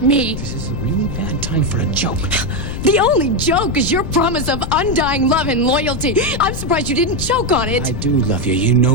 me. This is a really bad time for a joke. The only joke is your promise of undying love and loyalty. I'm surprised you didn't choke on it. I do love you. You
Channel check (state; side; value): noise; left; rumble, 6 dB below the sound